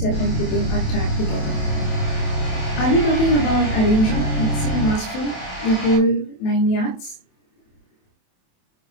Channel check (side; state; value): right; late; 28 ms